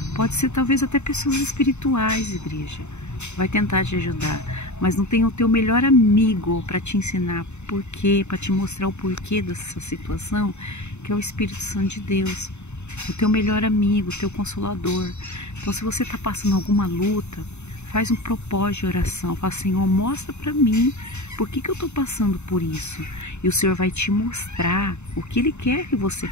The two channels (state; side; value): late; right; 0.82 ms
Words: Pode ser talvez até pessoas espirituais, igreja. Vai tentar te ajudar, mas não tem o teu melhor amigo para te ensinar porquê, para te mostrar o porquê dessa situação, que é o Espírito Santo de Deus, o teu melhor amigo, o teu consolador. Então, se você está passando alguma luta, faz um propósito de oração, fala, Senhor, mostra para mim por que eu estou passando por isso, e o Senhor vai te mostrar o que Ele quer que você